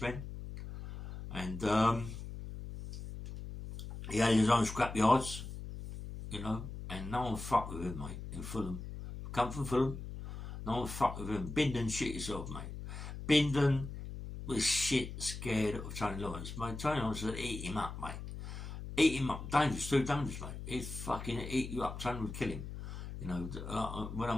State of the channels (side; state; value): left; noise; hum, 9 dB below the sound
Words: And he had his own scrap yards, you know, and no one fucked with him, mate, in Fulham. Come from Fulham, no one fucked with him. Bindon shit yourself, mate. Bindon was shit scared of Tony Lawrence. Mate, Tony Lawrence would eat him up, mate. Eat him up. Dangerous, too dangerous, mate. He'd fucking eat you up. Tony would kill him. You know, when I